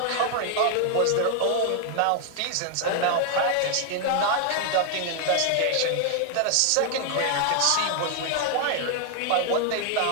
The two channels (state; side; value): different; both; correlation 0.00